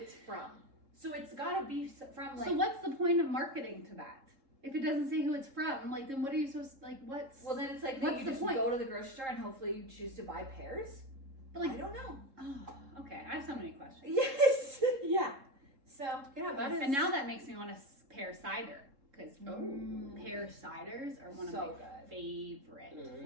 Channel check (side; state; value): left; late; 3.7 ms